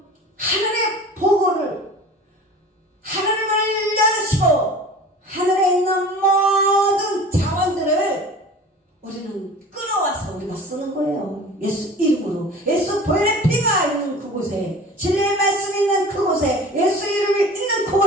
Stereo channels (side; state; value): both; normal; correlation 0.40